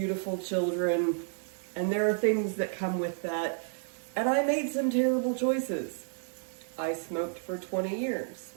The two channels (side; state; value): left; silent; digital silence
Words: children, and there are things that come with that. And I made some terrible choices. I smoked for 20 years.